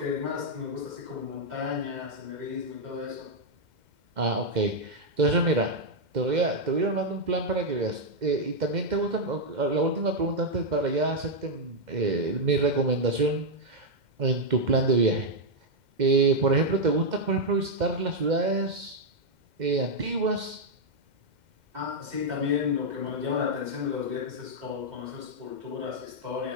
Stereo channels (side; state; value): left; late; 2.1 ms